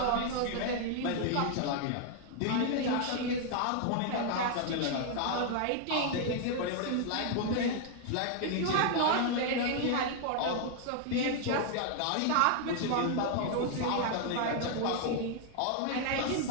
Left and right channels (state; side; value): different; both; correlation 0.00